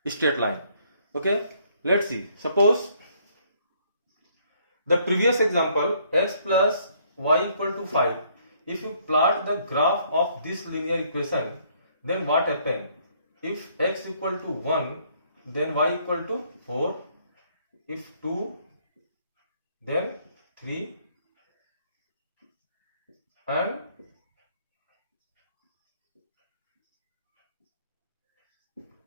straight line. Okay, let's see. Suppose the previous example, x plus y equal to 5. If you plot the graph of this linear equation, then what happens? If x equal to 1, then y equal to 4. If 2, then 3, and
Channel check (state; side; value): inverted; both; correlation -0.66